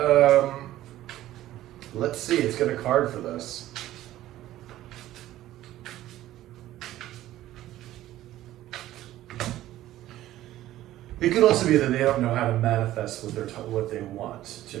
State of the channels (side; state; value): left; quieter; 14.4 dB